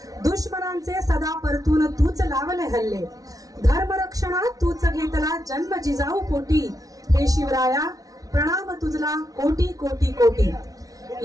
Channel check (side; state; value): left; late; 0.18 ms